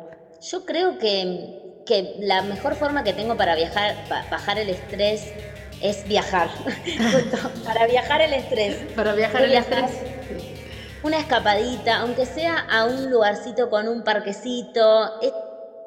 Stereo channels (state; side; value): identical; both; correlation 1.00